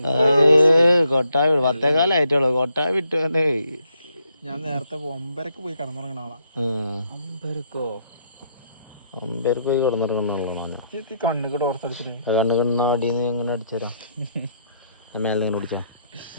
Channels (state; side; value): inverted; both; correlation -0.74